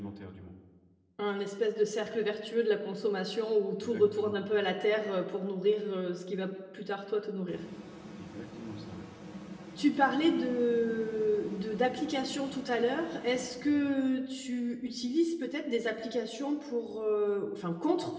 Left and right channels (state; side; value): identical; both; correlation 1.00